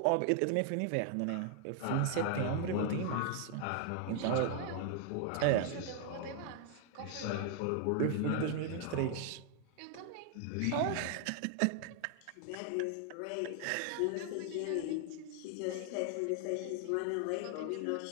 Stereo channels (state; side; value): different; both; correlation 0.00